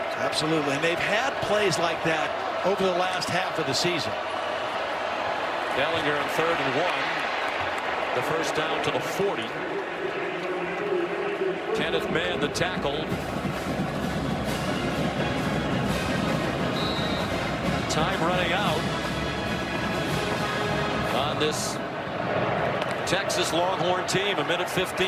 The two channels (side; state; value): both; identical; correlation 1.00